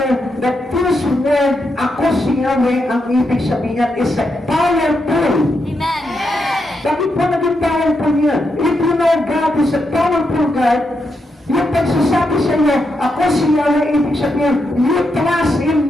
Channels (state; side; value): normal; both; correlation 0.83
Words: that this word, ako si Yahweh, ang ibig sabihin is powerful. Amen. Bakit po naging powerful yan? If you know God is a powerful God, yung pagsasabi sa iyo, ako si Yahweh, ibig sabihin, you trust in